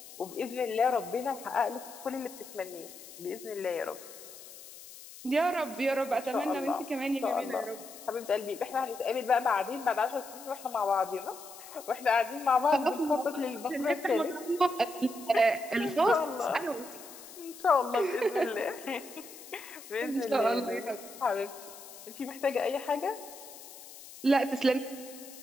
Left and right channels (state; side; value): noise; left; hiss, 16 dB below the sound